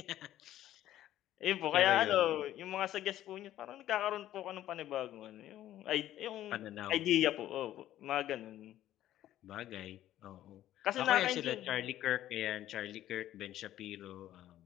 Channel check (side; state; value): right; quieter; 13.0 dB